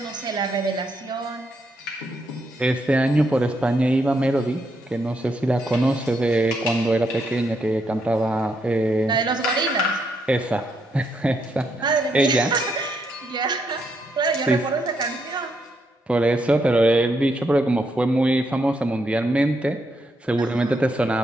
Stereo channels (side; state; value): both; normal; correlation 0.78